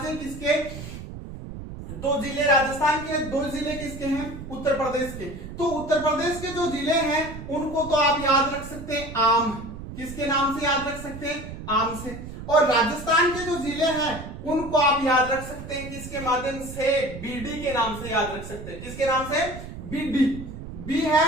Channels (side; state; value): right; noise; rumble, 11 dB below the sound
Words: किसके, 2 जिले राजस्थान के, 2 जिले किसके हैं, उत्तर प्रदेश के। तो उत्तर प्रदेश के जो जिले हैं उनको तो आप याद रख सकते हैं आम, किसके नाम से याद रख सकते हैं, आम से। और राजस्थान के जो जिले हैं उनको आप याद रख सकते हैं किसके माध्यम से, बीडी के नाम से याद रख सकते हैं। किसके नाम से, बीडी। बी है